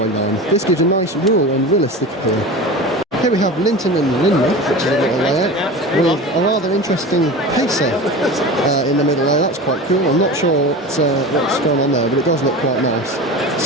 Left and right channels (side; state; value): both; normal; correlation 0.31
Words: line. This gives a nice rural and realistic appeal. Here we have Linton and Lynmouth, which is a little layout, with a rather interesting pacer in the middle there. That's quite cool. I'm not sure what's going on there, but it does look quite nice.